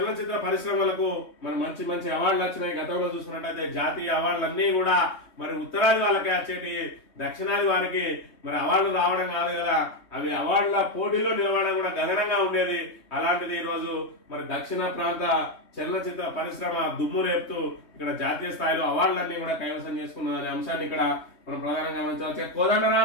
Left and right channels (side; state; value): right; late; 3.2 ms